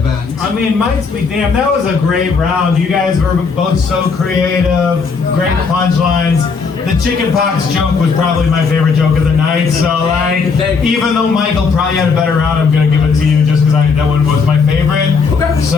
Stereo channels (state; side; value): quieter; right; 5.0 dB